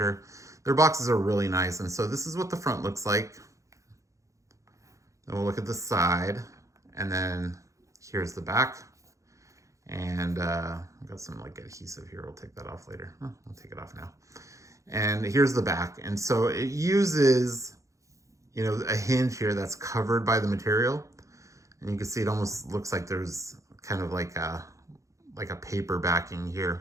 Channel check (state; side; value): late; left; 0.15 ms